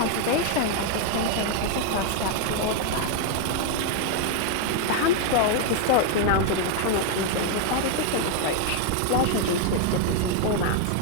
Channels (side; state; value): both; different; correlation 0.00